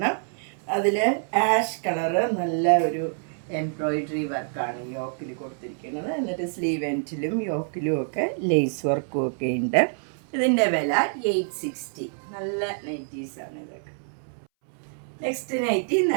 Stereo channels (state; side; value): silent; left; 61 dB below the other